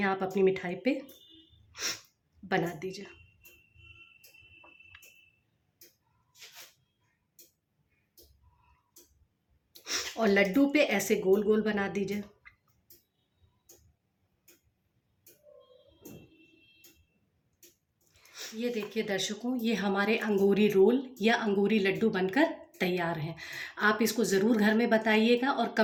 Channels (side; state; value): both; identical; correlation 1.00